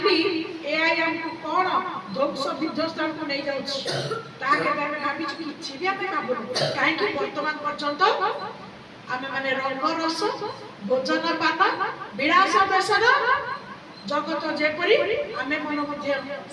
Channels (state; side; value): identical; both; correlation 1.00